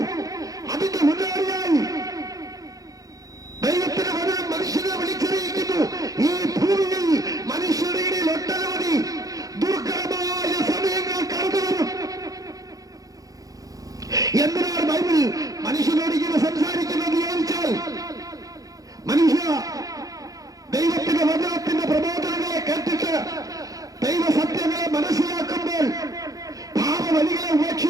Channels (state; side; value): late; left; 0.17 ms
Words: അതിന്റെ മുന്നോടിയായി ദൈവത്തിന്റെ വചനം മനുഷ്യനെ വിളിച്ചറിയിക്കുന്നു. ഈ ഭൂമിയിൽ മനുഷ്യരുടെ ഇടയിൽ ഒട്ടനവധി ദുർഘടമായ സമയങ്ങൾ കടന്നുവരും. എന്തിനാണ് ബൈബിൾ മനുഷ്യനോട് ഇങ്ങനെ സംസാരിക്കുന്നത് ചോദിച്ചാൽ, മനുഷ്യ ദൈവത്തിന്റെ വചനത്തിന്റെ പ്രബോധനങ്ങളെ കേട്ടിട്ട് ദൈവസത്യങ്ങളെ മനസ്സിലാക്കുമ്പോൾ പാപവഴികളെ